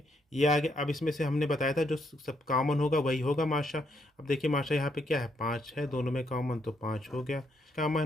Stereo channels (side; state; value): both; normal; correlation 0.76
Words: ये आ गया। अब इसमें से हमने बताया था जो सब कॉमन होगा वही होगा माशा। अब देखिए माशा यहाँ पे क्या है, 5 है, दोनों में कॉमन तो 5 हो गया